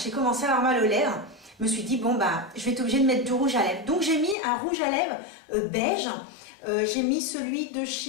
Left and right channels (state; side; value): drops out; right; at 4.4 s